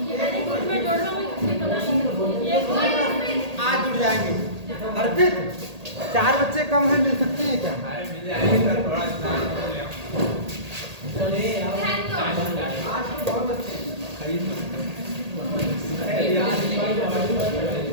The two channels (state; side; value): late; left; 1.8 ms